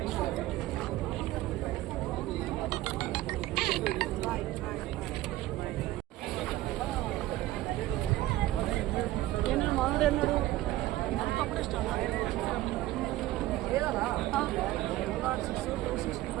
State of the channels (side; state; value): left; quieter; 16.1 dB